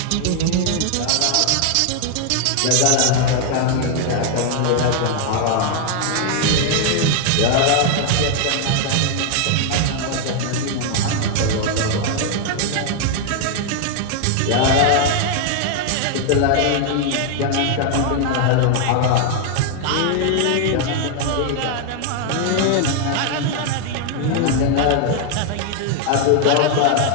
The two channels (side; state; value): both; different; correlation 0.00